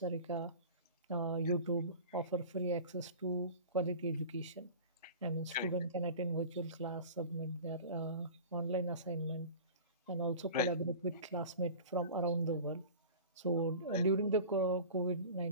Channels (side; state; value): both; inverted; correlation -0.37